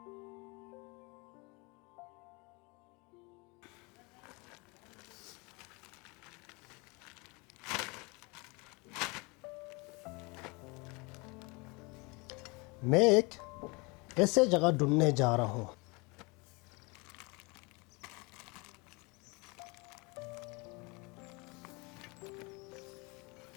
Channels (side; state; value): right; quieter; 27.8 dB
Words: मैं एक ऐसे जगह ढूंढने जा रहा हूँ।